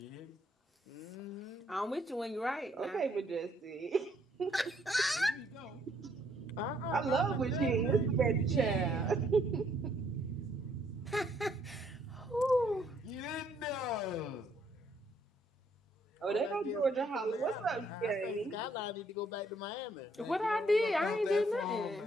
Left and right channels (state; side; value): normal; both; correlation 0.68